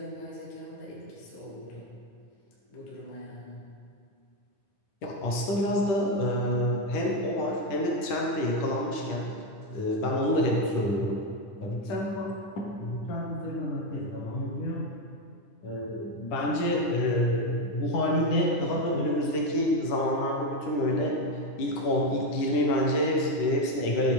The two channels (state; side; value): late; right; 10 ms